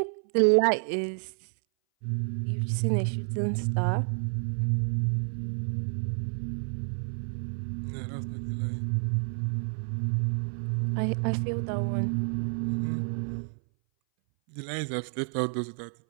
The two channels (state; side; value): silent; left; 58 dB below the other